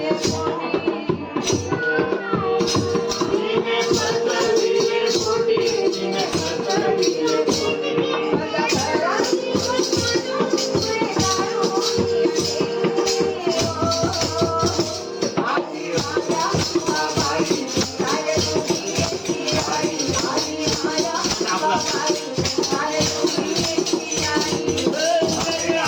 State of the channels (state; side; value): identical; both; correlation 1.00